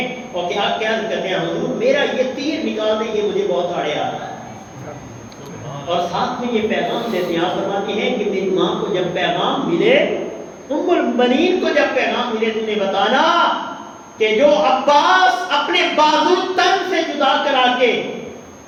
اور کیا کہتے ہیں حضور میرا یہ تیر نکال دیں، یہ مجھے بہت آڑے آ رہا ہے، اور ساتھ میں یہ پیغام دیتے ہیں۔ آپ فرماتے ہیں کہ میری ماں کو جب پیغام ملے، ام البنین کو جب پیغام ملے، تم نے بتانا کہ جو عباس اپنے بازو تن سے جدا کرا کے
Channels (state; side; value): identical; both; correlation 1.00